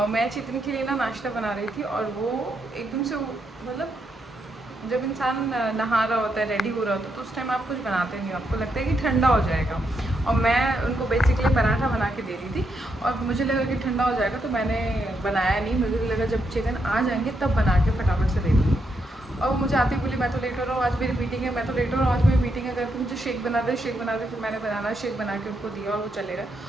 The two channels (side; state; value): both; normal; correlation 0.80